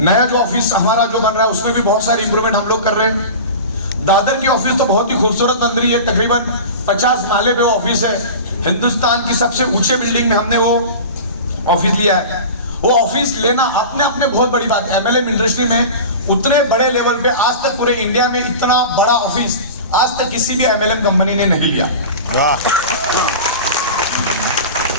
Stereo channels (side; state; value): both; inverted; correlation -0.33